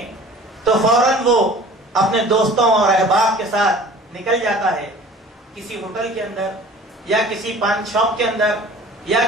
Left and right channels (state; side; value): normal; both; correlation 0.45